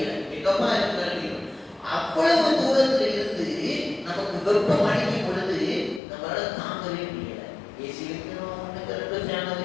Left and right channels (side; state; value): right; drops out; at 6.0 s